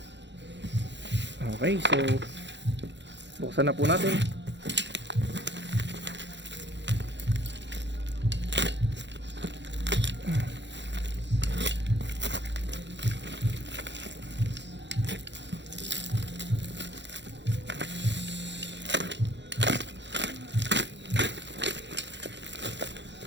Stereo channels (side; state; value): left; late; 0.52 ms